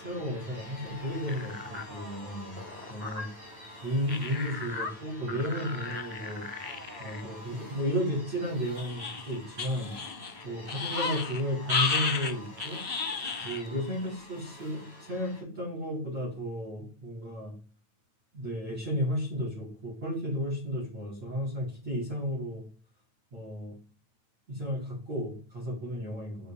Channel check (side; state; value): left; late; 9.2 ms